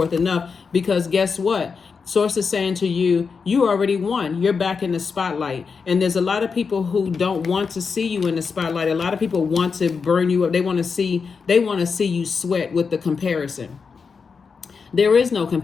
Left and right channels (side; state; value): right; quieter; 5.4 dB